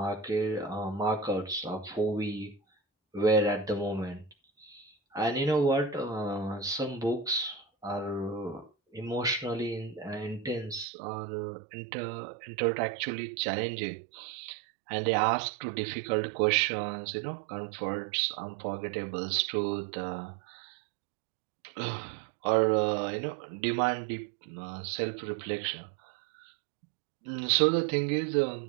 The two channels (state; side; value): drops out; left; at 10.9 s